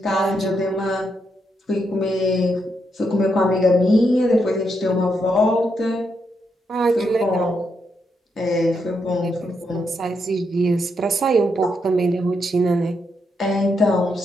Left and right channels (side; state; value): both; normal; correlation 0.80